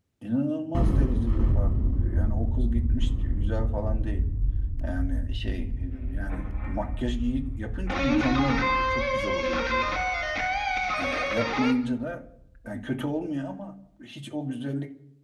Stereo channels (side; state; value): both; identical; correlation 1.00